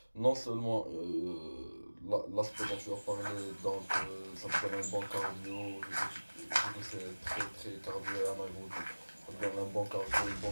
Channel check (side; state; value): both; inverted; correlation -1.00